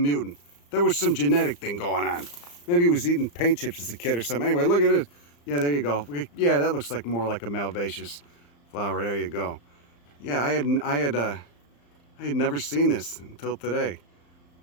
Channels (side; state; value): right; late; 35 ms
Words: There was some genetic thing going on. Maybe he was eating paint chips as a kid or something. Anyway, look at it. Yeah, there you go. Yeah, that looks like more like a malvaceous flower. There you go. Yeah, I had never seen this until today.